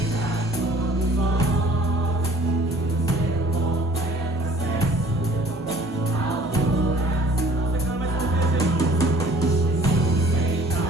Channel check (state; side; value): normal; both; correlation 0.53